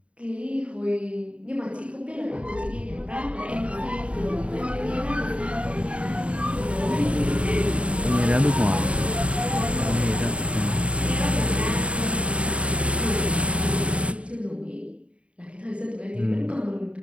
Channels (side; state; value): left; late; 0.061 ms